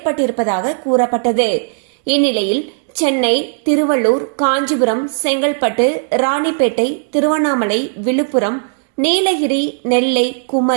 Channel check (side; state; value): left; silent; digital silence